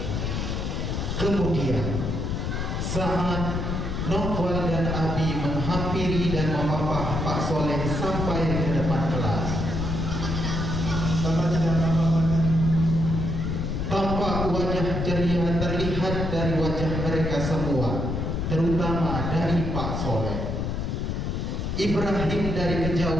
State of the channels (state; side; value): noise; left; rumble, 2 dB below the sound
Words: Kemudian saat Novel dan Abi menghampiri dan memapah Pak Soleh sampai ke depan kelas, Bapak tidak apa-apa. tampak wajah ceria terlihat dari wajah mereka semua, terutama dari Pak Soleh. Ibrahim dari